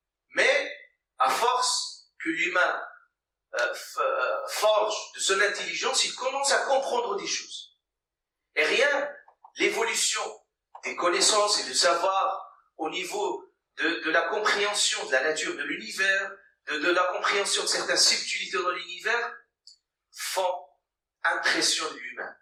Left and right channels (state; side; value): identical; both; correlation 1.00